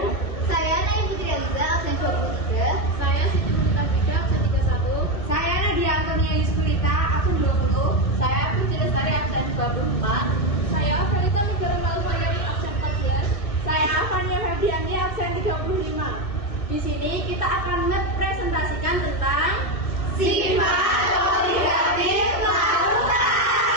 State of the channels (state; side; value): late; right; 2.2 ms